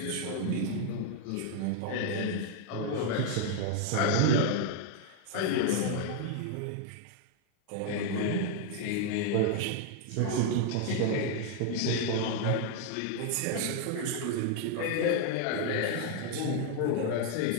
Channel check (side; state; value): both; different; correlation 0.00